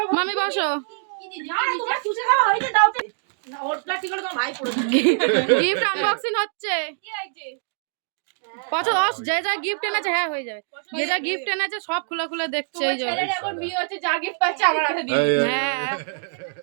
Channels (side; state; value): left; silent; digital silence